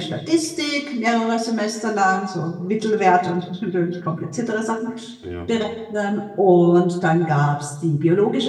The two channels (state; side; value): identical; both; correlation 1.00